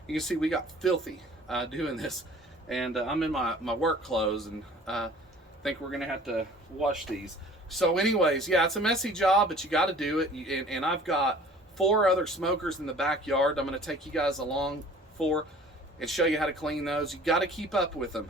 You can see we got filthy doing this, and I'm in my work clothes, and think we're gonna have to wash these. So anyways, yeah, it's a messy job, but you got to do it. And I've got 4 other smokers in the backyard I'm gonna take you guys along for and show you how to clean those. You got to keep up with them.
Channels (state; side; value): normal; both; correlation 0.49